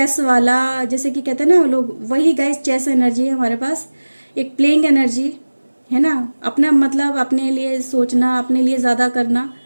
वाला, जैसे कि कहते हैं ना लोग, वही गाइस चेस एनर्जी है हमारे पास, एक प्लेइंग एनर्जी है ना, अपना मतलब अपने लिए सोचना, अपने लिए ज़्यादा करना,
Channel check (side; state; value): both; inverted; correlation -1.00